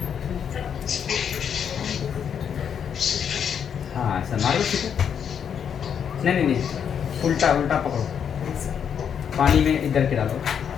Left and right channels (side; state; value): right; quieter; 7.9 dB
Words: हाँ ऐसा मारो छीटा। नहीं नहीं नहीं, उल्टा उल्टा पकड़ो, पानी में इधर के डालो,